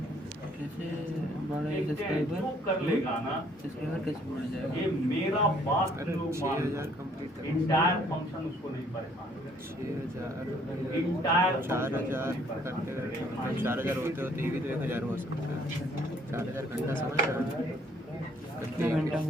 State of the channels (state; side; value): normal; both; correlation 0.62